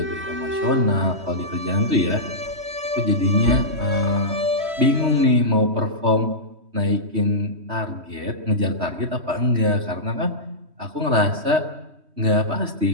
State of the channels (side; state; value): left; late; 3.1 ms